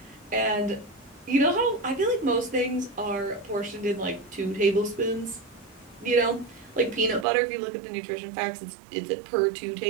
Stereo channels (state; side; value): drops out; left; at 7.2 s